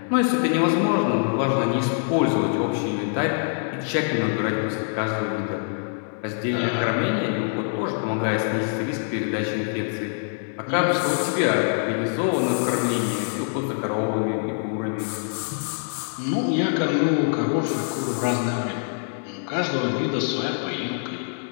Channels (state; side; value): silent; right; 62 dB below the other